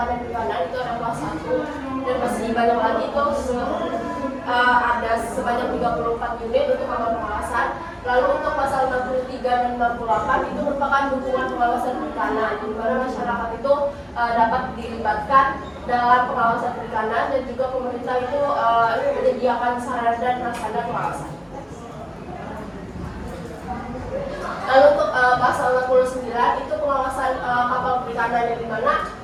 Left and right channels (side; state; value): both; identical; correlation 1.00